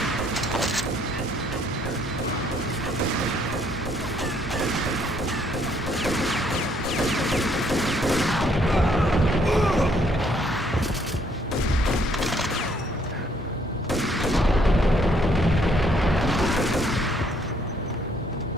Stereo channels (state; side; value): normal; both; correlation 0.67